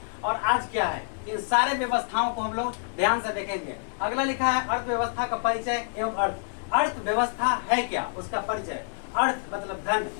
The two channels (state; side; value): silent; right; 60 dB below the other